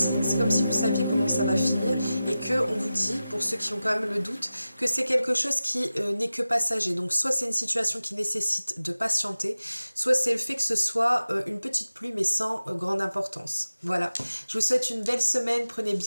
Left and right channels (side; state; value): both; inverted; correlation -0.95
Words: c'est comme si vous saviez comment ça va finir et qu'on vous dit, pour ceux qui ont quand même le doute, que c'est quelque chose qui n'est que passager. Donc soit c'est une situation qui nécessite de patienter, soit c'est le fait que ce soit une petite pluie mais sans grande importance. Voilà, je vous souhaite une belle semaine, prenez